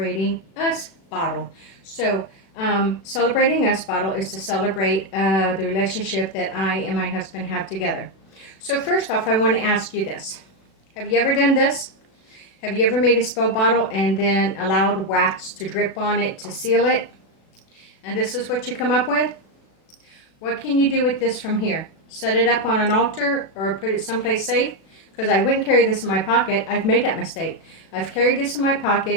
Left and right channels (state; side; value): late; right; 36 ms